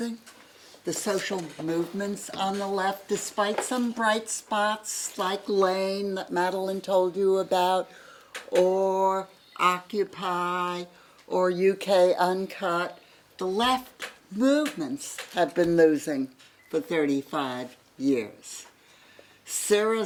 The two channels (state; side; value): identical; both; correlation 1.00